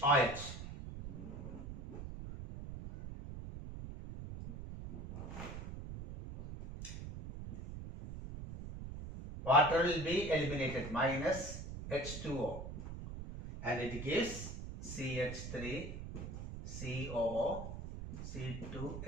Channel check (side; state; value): right; noise; rumble, 8 dB below the sound